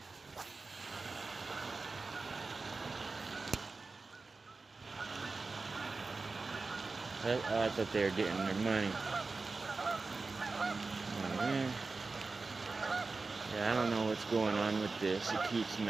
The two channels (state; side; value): quieter; left; 3.9 dB